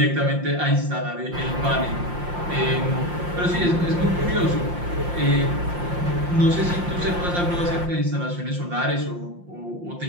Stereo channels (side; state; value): left; late; 5.7 ms